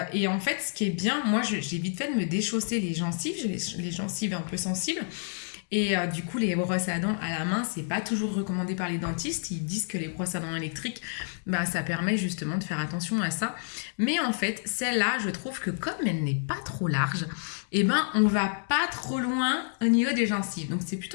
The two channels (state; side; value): silent; right; digital silence